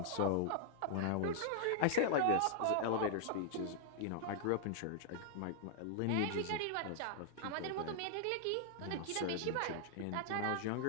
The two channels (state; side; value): different; both; correlation -0.01